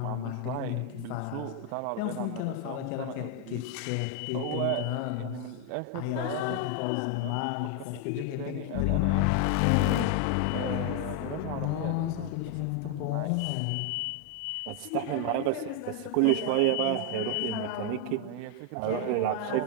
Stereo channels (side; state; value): both; different; correlation 0.01